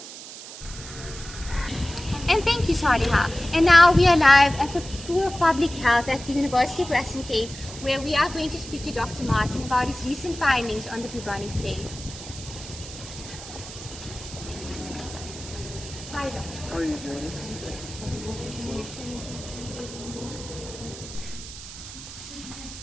And thank you, Saliha. And now we are live at the School of Public Health at the University of Western Cape, where we are going to speak to Dr. Martin about his recent findings on the bubonic plague. Hi, Doctor. How are you doing?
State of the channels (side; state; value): right; noise; hiss, 13 dB below the sound